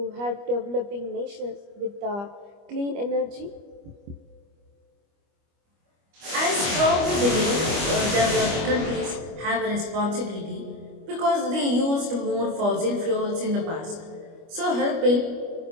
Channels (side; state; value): left; late; 25 ms